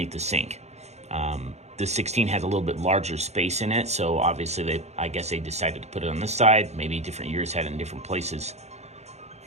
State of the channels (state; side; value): late; left; 0.32 ms